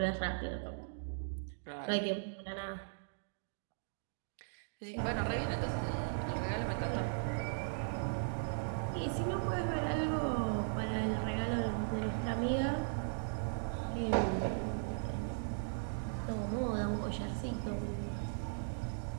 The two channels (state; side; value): silent; left; digital silence